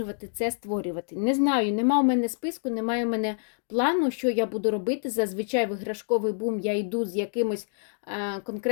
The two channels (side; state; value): right; silent; digital silence